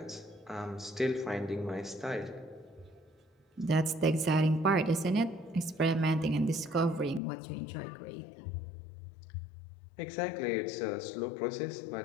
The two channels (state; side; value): drops out; right; at 7.2 s